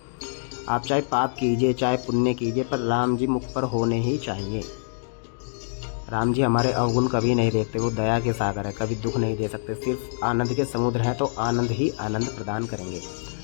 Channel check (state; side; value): silent; right; 62 dB below the other